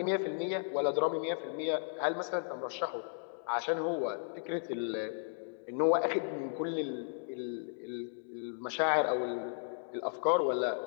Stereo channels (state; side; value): silent; right; digital silence